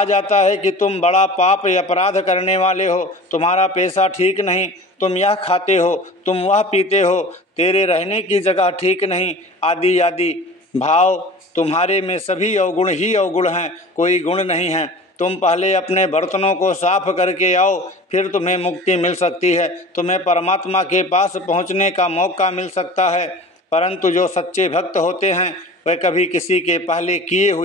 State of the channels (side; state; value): both; normal; correlation 0.39